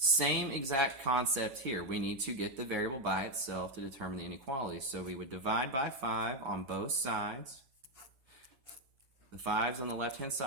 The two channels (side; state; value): left; late; 7.6 ms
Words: exact concept here. We need to get the variable by itself to determine the inequality. So we would divide by 5 on both sides. The 5's on the left-hand